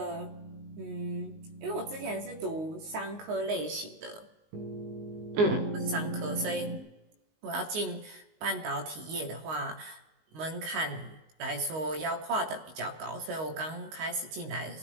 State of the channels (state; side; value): late; left; 19 ms